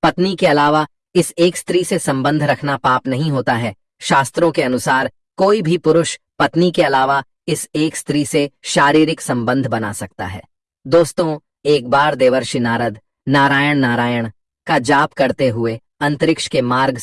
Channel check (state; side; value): identical; both; correlation 1.00